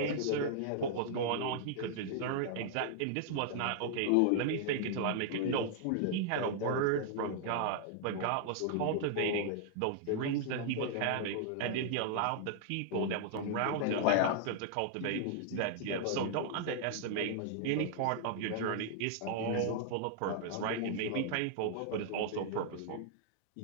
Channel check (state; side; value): different; both; correlation -0.01